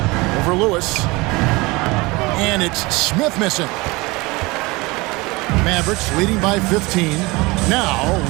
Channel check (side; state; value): left; quieter; 23.5 dB